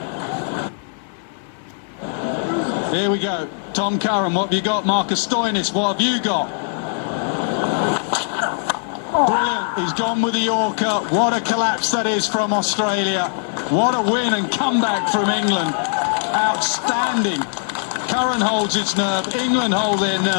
Here we go. Tom Curran, what have you got? Marcus Stoinis, what have you got? Brilliant. He's gone with the Yorker. What a collapse that is from Australia. What a win and comeback from England. Outstanding. Curran holds its nerve. England hold their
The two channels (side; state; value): right; silent; 59 dB below the other